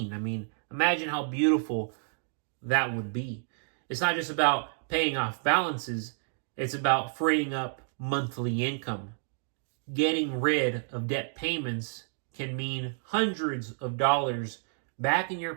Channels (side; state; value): left; silent; digital silence